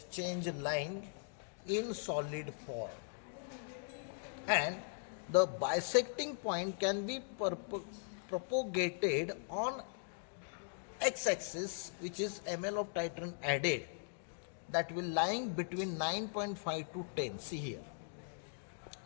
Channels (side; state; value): right; silent; digital silence